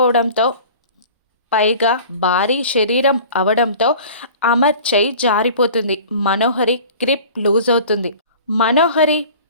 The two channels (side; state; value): both; inverted; correlation -0.43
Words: పైగా భారీ శరీరం అవడంతో అమర్ చెయ్యి జారిపోతుంది. మనోహరి గ్రిప్ లూజ్ అవుతుంది. మనోహరి